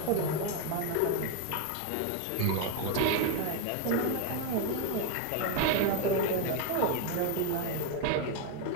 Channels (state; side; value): different; both; correlation 0.01